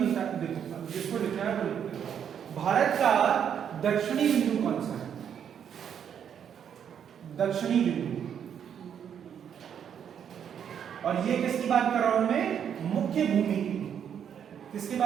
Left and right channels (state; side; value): quieter; left; 8.5 dB